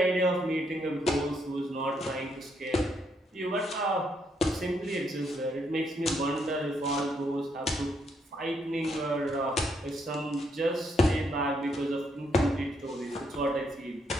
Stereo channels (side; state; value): both; normal; correlation 0.75